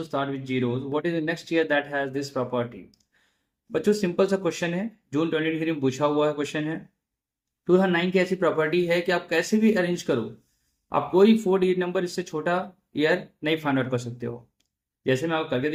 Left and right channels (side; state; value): both; identical; correlation 1.00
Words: start with zeros. What is the next year that has this property? बच्चों, simple सा question है, जून 2023 में पूछा हुआ है question है। 2009 की ऐसी प्रॉपर्टी है कि आप कैसे भी अरेंज करो, आप कोई 4-digit नंबर इससे छोटा ईयर नहीं फाइंड आउट कर सकते हो। जैसे मैं आपको करके